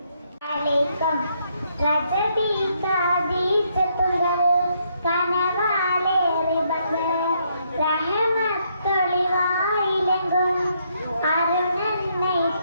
അലൈക്കും. രജബി കാദീസത്തുകൾ കനവാലേറി ബദർ, റഹമത്തൊളിവായിലെങ്കും അരുണന്നൈ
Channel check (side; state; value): both; inverted; correlation -0.74